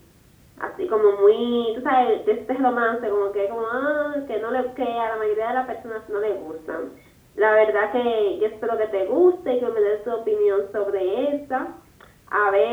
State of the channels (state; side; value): identical; both; correlation 1.00